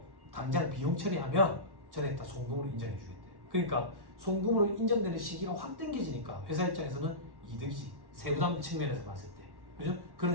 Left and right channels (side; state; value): left; late; 1.1 ms